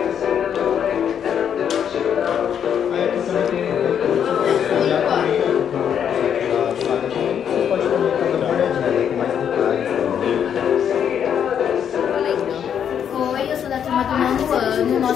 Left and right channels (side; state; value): right; quieter; 8.5 dB